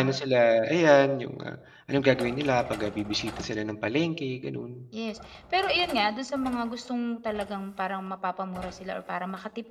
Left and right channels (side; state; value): both; identical; correlation 1.00